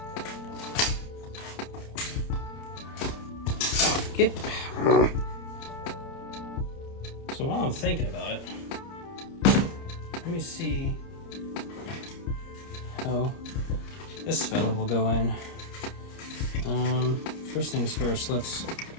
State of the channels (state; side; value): late; right; 30 ms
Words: Come on, get. So while I'm thinking about it, let me see how this fella will go in. First things first, let's